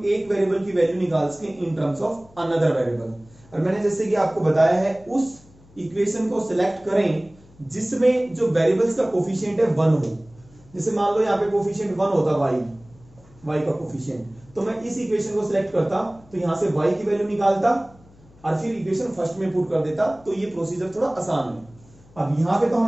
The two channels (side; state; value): left; noise; hum, 26 dB below the sound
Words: एक वेरिएबल की वैल्यू निकाल सके इन टर्म्स ऑफ अनदर वेरिएबल। और मैंने जैसे कि आपको बताया है उस इक्वेशन को सिलेक्ट करें जिसमें जो वेरिएबल्स का कोफिशिएंट है 1 हो। जैसे मान लो यहाँ पे कोफिशिएंट 1 होता y का कोफिशिएंट, तो मैं इस इक्वेशन को सिलेक्ट करता तो यहां से y की वैल्यू निकालता और फिर इक्वेशन फर्स्ट में पुट कर देता, तो ये प्रोसीजर थोड़ा आसान है। अब यहां पे तो